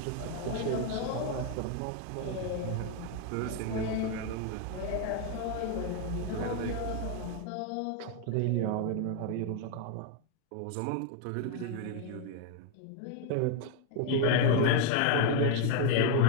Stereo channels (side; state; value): both; different; correlation 0.01